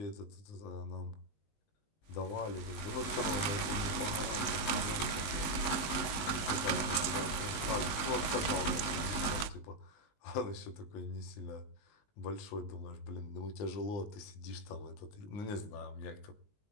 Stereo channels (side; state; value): right; late; 19 ms